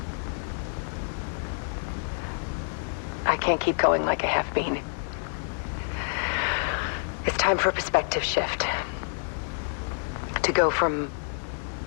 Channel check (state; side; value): silent; right; 59 dB below the other